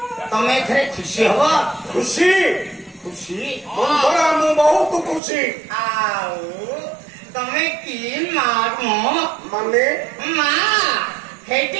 ତମେ ଏଥିରେ ଖୁସି ହବ? ଖୁସି ଖୁସି ମୁଁ ବହୁତ ଖୁସି। ଆଉ ତମେ କି ମା? ମାନେ ମା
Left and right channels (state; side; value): drops out; left; at 5.2 s